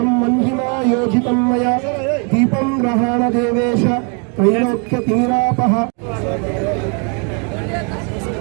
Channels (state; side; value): quieter; left; 37.0 dB